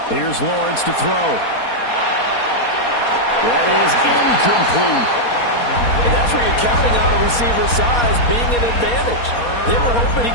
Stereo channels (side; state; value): right; late; 4.2 ms